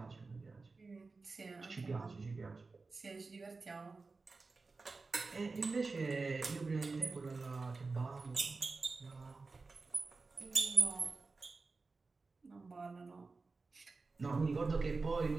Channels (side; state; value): left; quieter; 4.0 dB